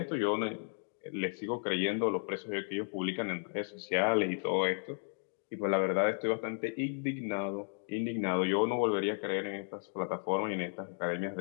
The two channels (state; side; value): silent; right; 55 dB below the other